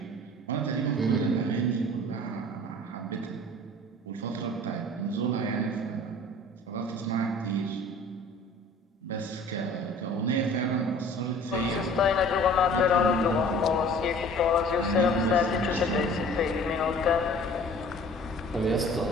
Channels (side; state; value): both; normal; correlation 0.47